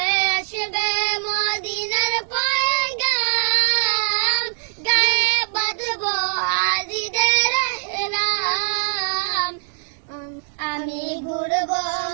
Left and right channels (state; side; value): silent; left; digital silence